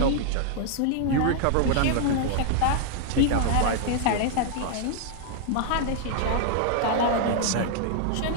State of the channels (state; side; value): different; both; correlation 0.00